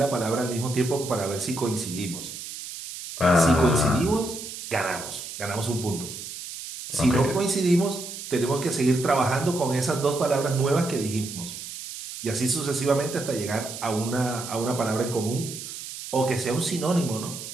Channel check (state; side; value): noise; right; hiss, 10 dB below the sound